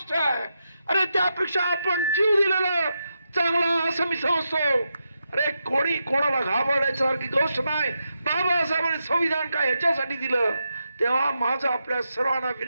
आहे. अरे त्यापेक्षा आपण जीव दिलेला चांगला असं मी समजतो. अरे कोणी कोणाला घाबरण्यासारखी गोष्ट नाही. बाबासाहेबांनी संविधान काय ह्याच्यासाठी दिलं. तेव्हा माझं आपल्या सर्वांना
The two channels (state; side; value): inverted; both; correlation -0.86